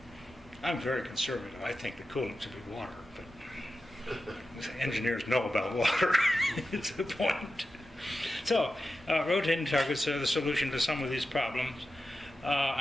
I'm very conservative. I think the coolant should be water, but engineers know about water. It's the point. So, rotating targets are the solution to some of these problems.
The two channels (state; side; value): normal; both; correlation 0.92